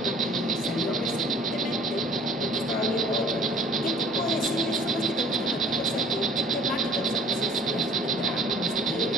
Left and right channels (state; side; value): normal; both; correlation 0.52